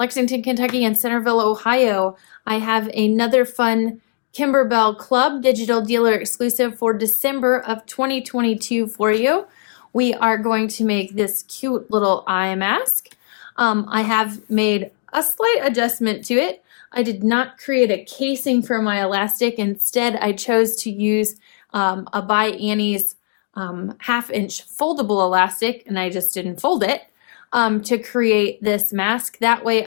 Kentucky and Centerville, Ohio. I have another fun Kimberbell Klub Digital Dealer Exclusive for December of 2022 for you. We are going to make this cute little eye mask. I have made a slight adjustment to it. I did not create a casing for my elastic. Instead, I chose to use a by Annie's half-inch foldable elastic, and I just didn't fold it to create this mask. That way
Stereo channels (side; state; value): right; silent; 61 dB below the other